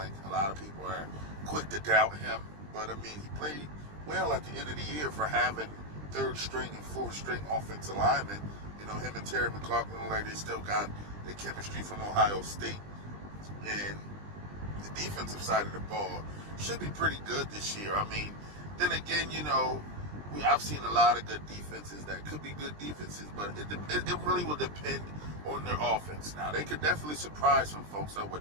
A lot of people are quick to doubt him. But, I mean, he played well at the end of the year for having third string and fourth string offensive linemen. You know, him and Terry McLaughlin, like they still got the chemistry from Ohio State. And the defensive side of the ball should be pretty good this year. I mean, then again, you know, I've seen a lot of good defenses that could be good defenses, but it really will depend on their offense. Now, they could definitely surprise some folks. I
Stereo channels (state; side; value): late; left; 20 ms